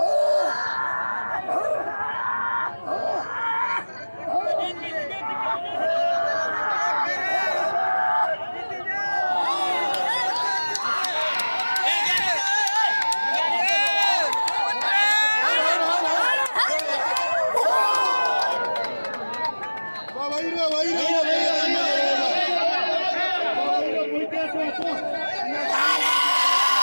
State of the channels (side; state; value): both; inverted; correlation -1.00